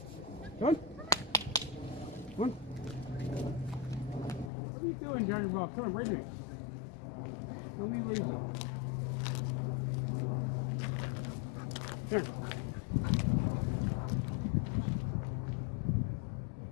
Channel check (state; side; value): drops out; right; at 4.5 s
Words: Come on. Come on. What are you doing, Johnny Ball? Come on, right here. Let me leave you. Here.